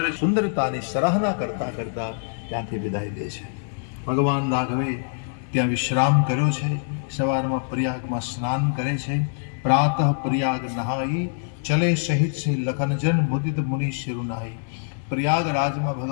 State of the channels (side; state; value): right; silent; digital silence